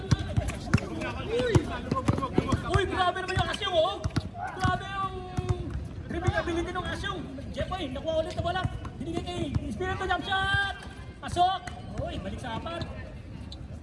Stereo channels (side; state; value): both; identical; correlation 1.00